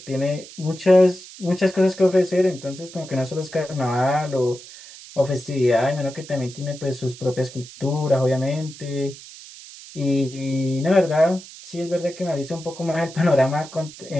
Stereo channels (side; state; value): right; noise; hiss, 17 dB below the sound